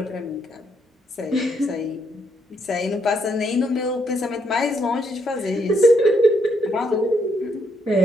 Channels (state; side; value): normal; both; correlation 0.74